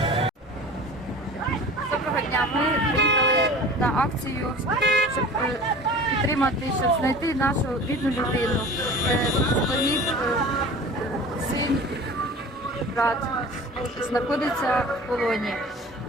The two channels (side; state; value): both; normal; correlation 0.40